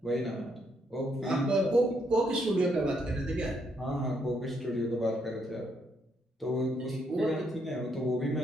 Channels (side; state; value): both; normal; correlation 0.74